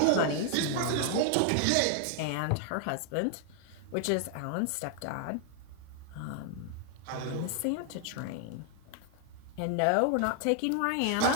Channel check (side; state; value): both; different; correlation 0.00